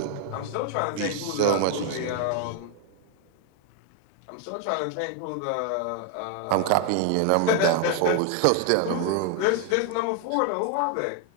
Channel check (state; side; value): different; both; correlation 0.01